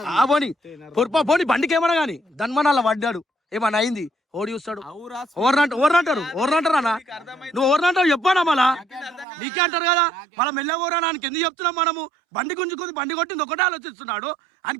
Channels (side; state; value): left; drops out; at 9.2 s